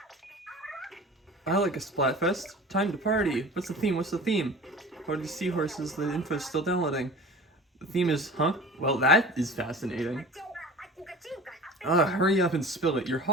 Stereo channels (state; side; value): normal; both; correlation 0.39